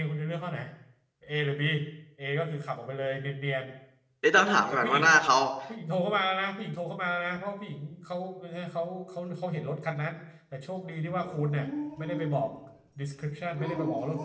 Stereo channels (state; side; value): identical; both; correlation 1.00